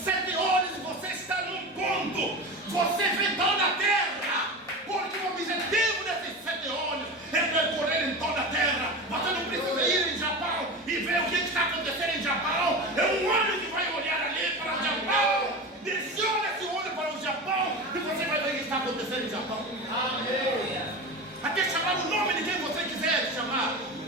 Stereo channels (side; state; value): both; normal; correlation 0.27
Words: 7 olhos você está num ponto. Você vê toda a terra. Porque o objetivo desses 7 olhos é percorrer em toda a terra. Você não precisa ir em Japão e ver o que está acontecendo em Japão. É um olho que vai olhar ali para o Japão. Direciona esse olho para o Japão e você vai ver o que está acontecendo em Japão. Amém. Até chamar o nome de quem você quiser chamar.